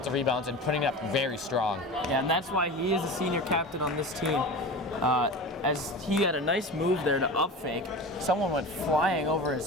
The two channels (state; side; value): normal; both; correlation 0.31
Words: rebounds and putting it up very strong. Yeah, and that's why he is the senior captain on this team. As he had a nice move there to up fake. Someone went flying over his